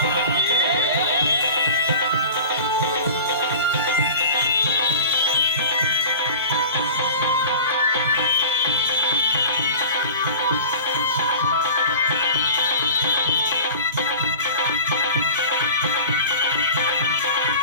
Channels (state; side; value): inverted; both; correlation -0.37